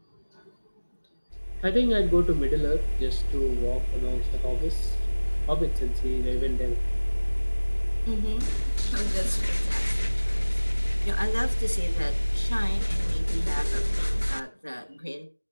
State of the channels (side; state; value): both; inverted; correlation -1.00